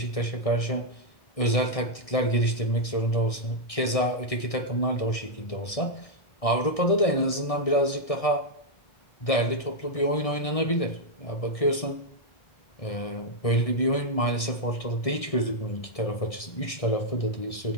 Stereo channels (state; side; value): late; right; 1.6 ms